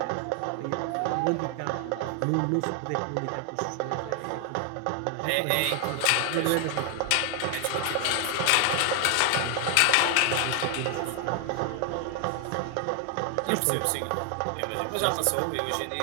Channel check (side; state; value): both; different; correlation 0.00